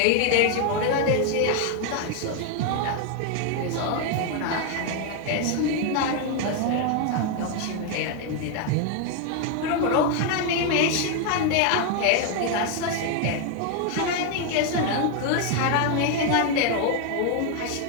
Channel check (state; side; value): different; both; correlation 0.01